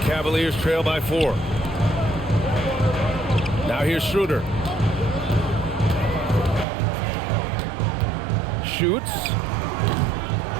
Cavaliers trail by 4. Now here's Schroeder. Shoots.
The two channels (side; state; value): left; drops out; at 6.7 s